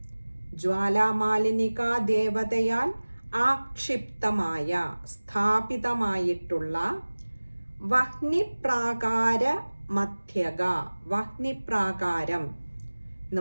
ജ്വാലാമാലിനിക ദേവതയാൽ ആക്ഷിപ്തമായ, സ്ഥാപിതമായിട്ടുള്ള, വഹ്നിപ്രാകാര മധ്യഗ. വഹ്നിപ്രാകാരം എന്ന്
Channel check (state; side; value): inverted; both; correlation -1.00